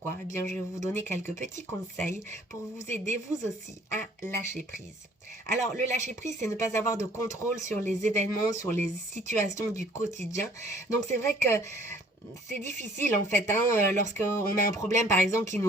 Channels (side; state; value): both; normal; correlation 0.57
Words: je vais vous donner quelques petits conseils pour vous aider vous aussi à lâcher prise. Alors le lâcher prise, c'est ne pas avoir de contrôle sur les événements, sur les situations du quotidien. Donc c'est vrai que c'est difficile en fait, lorsqu'on a un problème par exemple qui